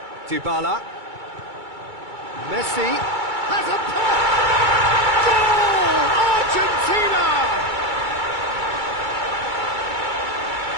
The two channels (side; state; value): left; late; 2.3 ms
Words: Dybala. Messi has a pop! Goal! Argentina!